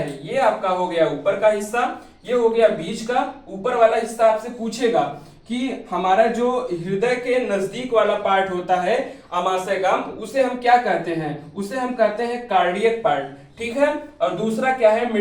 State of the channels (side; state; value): both; identical; correlation 1.00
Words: ये आपका हो गया ऊपर का हिस्सा, ये हो गया बीच का। ऊपर वाला हिस्सा आपसे पूछेगा कि हमारा जो हृदय के नजदीक वाला पार्ट होता है आमाशय का, उसे हम क्या कहते हैं, उसे हम कहते हैं कार्डियक पार्ट, ठीक है। और दूसरा क्या है,